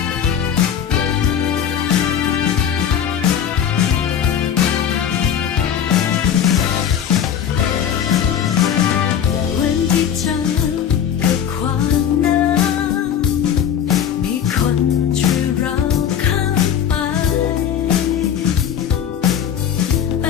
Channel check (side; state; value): right; quieter; 8.8 dB